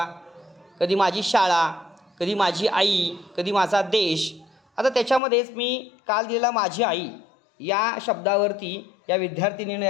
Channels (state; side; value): drops out; right; at 5.2 s